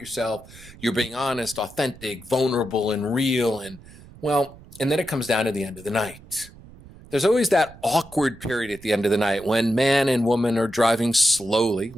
You're being honest, authentic, vulnerable, and real. And then it comes down to the end of the night. There's always that awkward period at the end of the night when man and woman are driving slowly.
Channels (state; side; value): noise; right; rumble, 20 dB below the sound